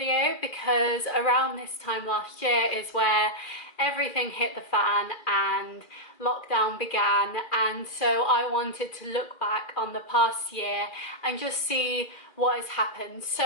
because around this time last year is where everything hit the fan and lockdown began, and so I wanted to look back on the past year and just see what has happened.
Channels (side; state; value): right; late; 2.4 ms